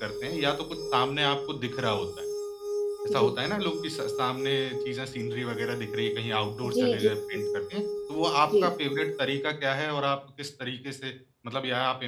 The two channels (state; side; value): identical; both; correlation 1.00